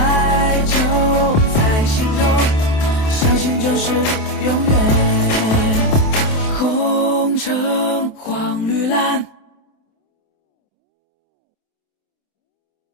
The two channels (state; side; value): late; right; 27 ms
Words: 就在心中，相信就是永远。红橙黄绿蓝。